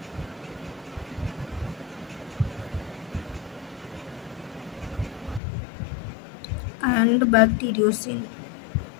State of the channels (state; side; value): drops out; right; at 5.4 s